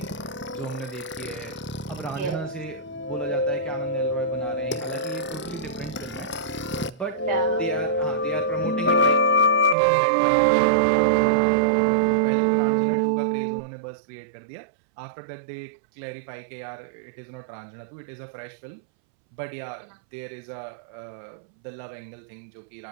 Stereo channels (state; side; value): drops out; left; at 9.8 s